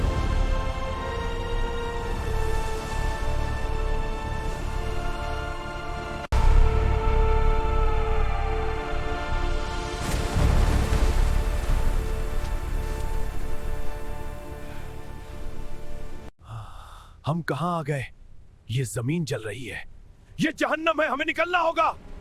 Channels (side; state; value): both; identical; correlation 1.00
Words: हम कहां आ गए? ये जमीन जल रही है। ये जहन्नम है, हमें निकलना होगा।